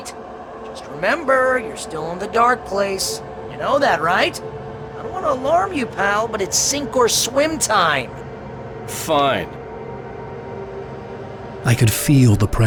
Just remember, you're still in the dark place. You know that, right? I don't want to alarm you, pal, but it's sink or swim time. Fine. I could feel the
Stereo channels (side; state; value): both; identical; correlation 1.00